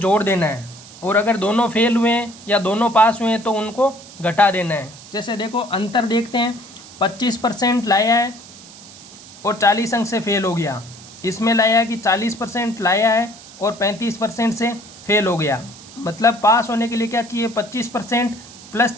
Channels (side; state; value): right; noise; hiss, 19 dB below the sound